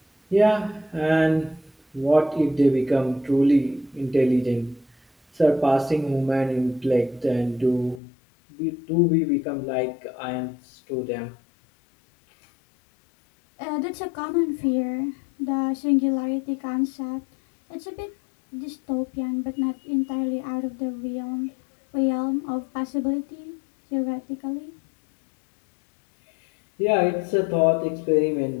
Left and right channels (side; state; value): right; drops out; at 8.0 s